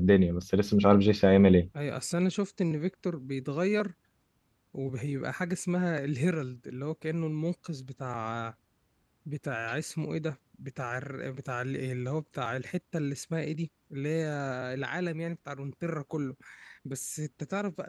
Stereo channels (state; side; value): identical; both; correlation 1.00